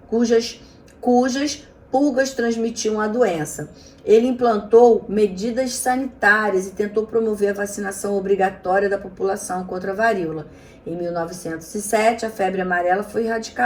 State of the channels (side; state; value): both; identical; correlation 1.00